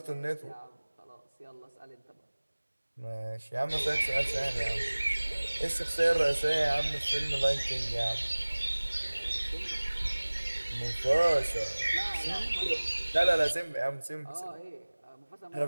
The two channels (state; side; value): inverted; both; correlation -1.00